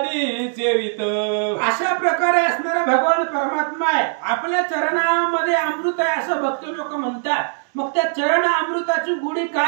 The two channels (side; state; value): left; silent; digital silence